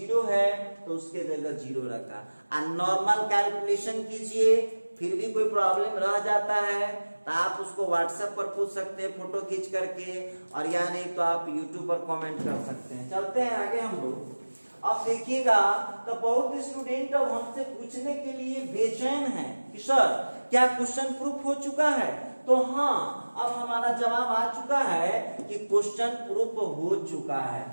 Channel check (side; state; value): both; inverted; correlation -1.00